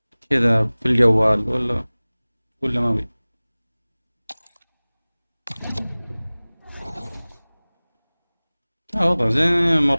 كذا في الجوال ولا ما بي؟ وضع زين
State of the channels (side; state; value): both; inverted; correlation -1.00